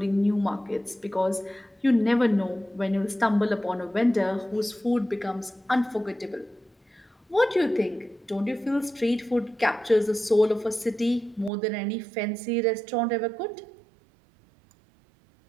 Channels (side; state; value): left; drops out; at 11.5 s